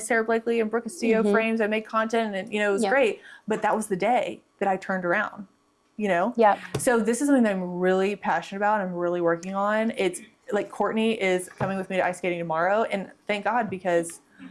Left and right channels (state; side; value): identical; both; correlation 1.00